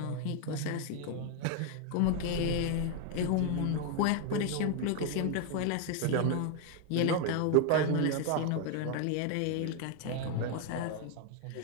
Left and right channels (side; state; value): both; different; correlation 0.01